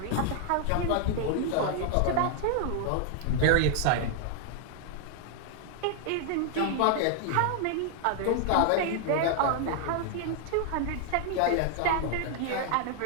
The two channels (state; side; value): different; both; correlation 0.00